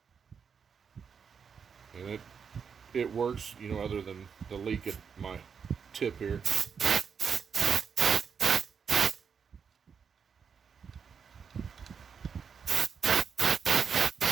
And it works, you know, other than the leak at my tip here.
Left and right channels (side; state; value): left; quieter; 6.5 dB